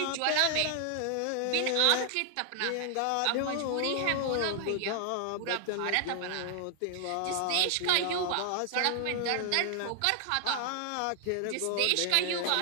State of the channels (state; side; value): different; both; correlation 0.00